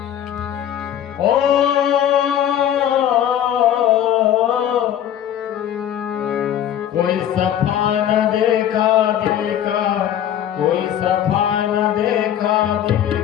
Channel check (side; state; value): right; quieter; 10.5 dB